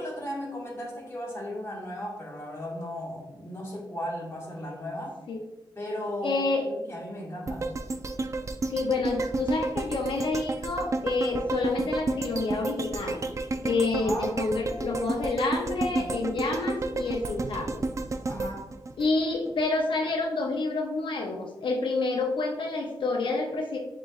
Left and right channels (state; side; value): normal; both; correlation 0.73